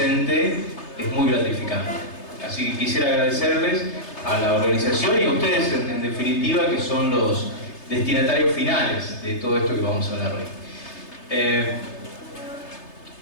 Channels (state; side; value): late; right; 3.3 ms